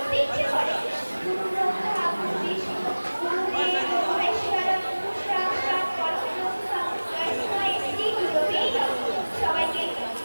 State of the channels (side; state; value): both; inverted; correlation -1.00